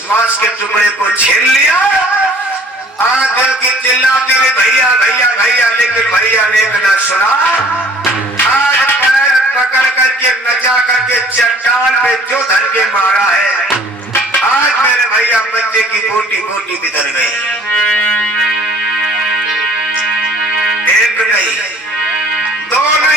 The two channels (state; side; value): normal; both; correlation 0.53